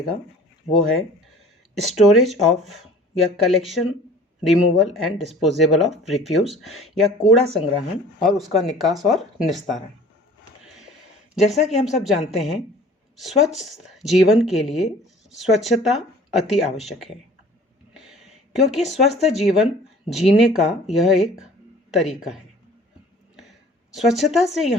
वो है स्टोरेज ऑफ या collection, removal and disposable of refuse या कूड़ा संग्रहण और उसका निकास और निस्तारण। जैसा कि हम सब जानते हैं, स्वच्छ जीवन के लिए स्वच्छता अति आवश्यक है, क्योंकि स्वस्थ जीवन जीने का यह एक तरीका है। स्वच्छता से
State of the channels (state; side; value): normal; both; correlation 0.48